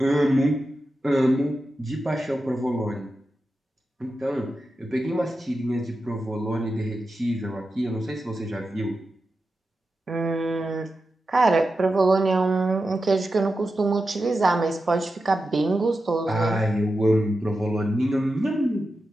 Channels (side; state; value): both; normal; correlation 0.91